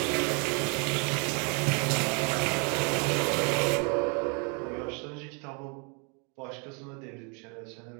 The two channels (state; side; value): quieter; left; 35.0 dB